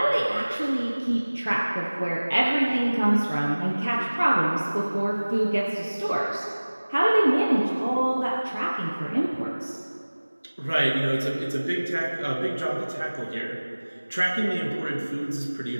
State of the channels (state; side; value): inverted; both; correlation -1.00